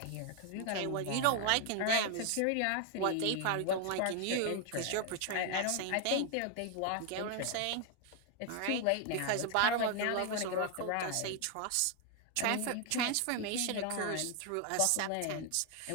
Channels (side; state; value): both; different; correlation 0.01